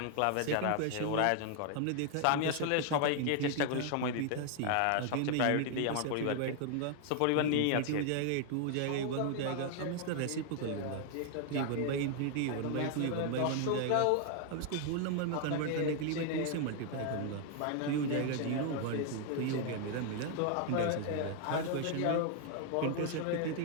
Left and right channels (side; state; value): both; different; correlation 0.00